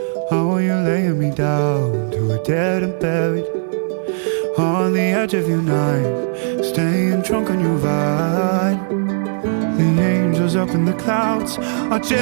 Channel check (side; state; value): left; silent; 56 dB below the other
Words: How are you laying me down to a dead and buried on the edge of your night, staying drunk on your vine. The angels up in the clouds are